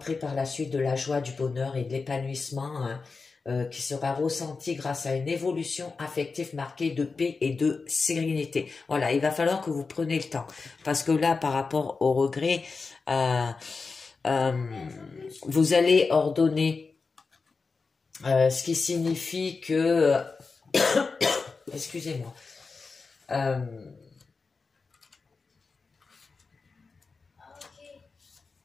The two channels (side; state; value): right; quieter; 4.4 dB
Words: par la suite de la joie, du bonheur et de l'épanouissement, hein, qui sera ressenti grâce à une évolution affective marquée de paix et de sérénité. Voilà, il va falloir que vous preniez le temps parce que là, par rapport au regret, vous allez ordonner, ce qui signifie que excusez-moi,